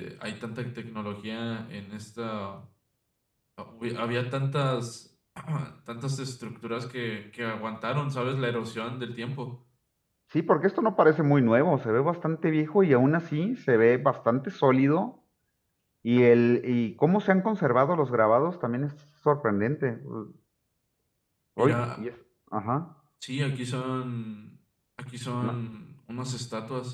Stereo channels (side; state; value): both; identical; correlation 1.00